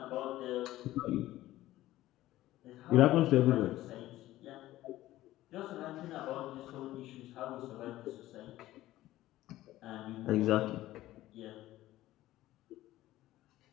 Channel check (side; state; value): right; quieter; 15.5 dB